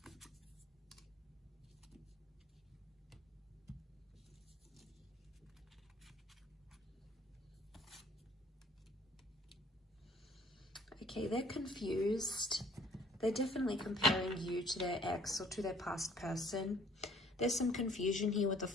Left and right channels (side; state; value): both; normal; correlation 0.56